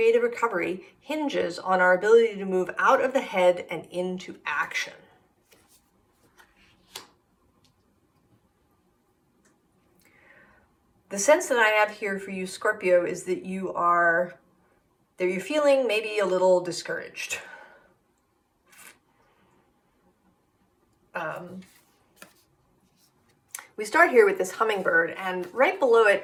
recovery hinges on our ability to move out of the head and into action. The sense that I have here for you, Scorpio, is that you're feeling maybe a little discouraged. We start here with this hummingbird, and right below it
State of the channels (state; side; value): identical; both; correlation 1.00